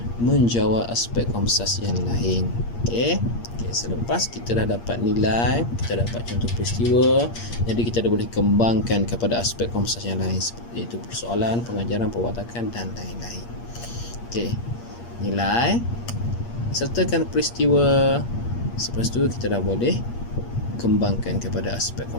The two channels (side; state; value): right; late; 8.6 ms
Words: menjawab aspek komsas yang lain. Selepas kita dah dapat nilai, kita dapat contoh peristiwa, jadi kita dah boleh kembangkan kepada aspek komsas yang lain, iaitu persoalan, pengajaran, perwatakan dan lain-lain. nilai, sertakan peristiwa. Selepas tu kita dah boleh kembangkan kepada aspek